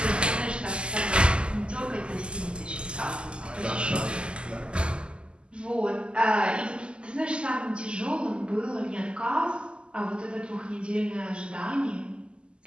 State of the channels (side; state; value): left; late; 0.051 ms